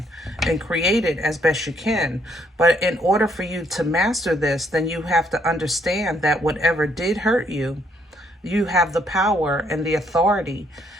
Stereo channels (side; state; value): both; normal; correlation 0.70